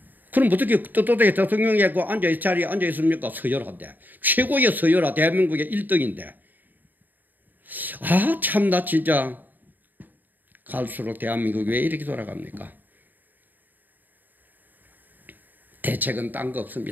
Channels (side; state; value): left; late; 0.088 ms